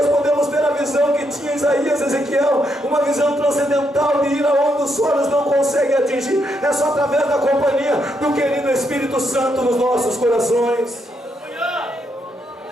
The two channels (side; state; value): both; normal; correlation 0.78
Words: podemos ter a visão que tinha Isaías e Ezequiel, uma visão transcendental de ir aonde os olhos não conseguem atingir. É só através da companhia do querido Espírito Santo nos nossos corações.